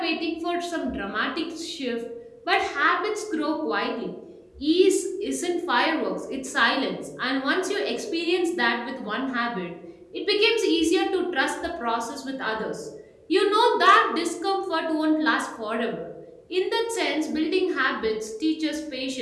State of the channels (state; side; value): identical; both; correlation 1.00